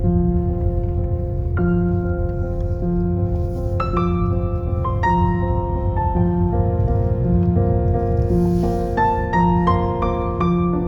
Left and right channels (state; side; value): identical; both; correlation 1.00